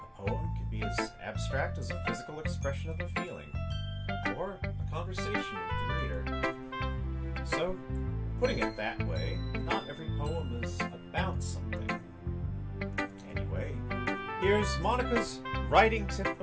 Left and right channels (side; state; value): both; identical; correlation 1.00